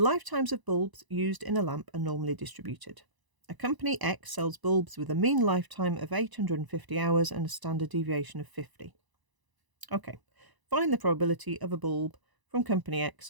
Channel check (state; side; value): late; left; 1.0 ms